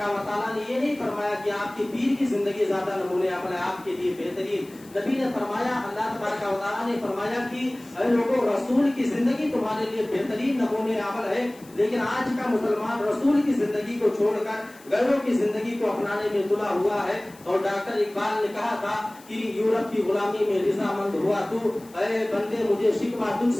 و تعالیٰ نے یہ نہیں فرمایا کہ آپ کے پیر کی زندگی زیادہ نمونہ عمل ہے, آپ کے لیے بہترین. نبی نے فرمایا, اللہ تبارک و تعالیٰ نے فرمایا کہ اے لوگوں, رسول کی زندگی تمہارے لیے بہترین نمونہ عمل ہے. لیکن آج کا مسلمان رسول کی زندگی کو چھوڑ کر غیروں کی زندگی کو اپنانے میں تلا ہوا ہے. اور ڈاکٹر اقبال نے کہا تھا کہ یورپ کی غلامی میں رضامند ہوا تو, اے بندے مجھے شکوہ تجھ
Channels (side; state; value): left; noise; hiss, 24 dB below the sound